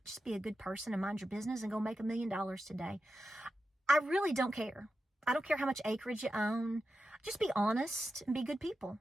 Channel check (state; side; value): normal; both; correlation 0.90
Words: a good person and mind your business and go make $1 million today. I really don't care. I don't care how much acreage you own. Just be honest and be good people.